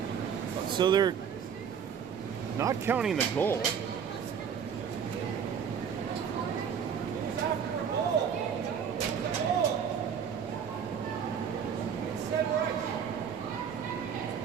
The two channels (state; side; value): quieter; left; 7.5 dB